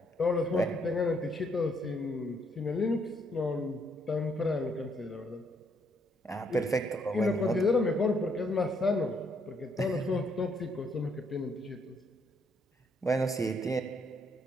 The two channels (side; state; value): both; normal; correlation 0.72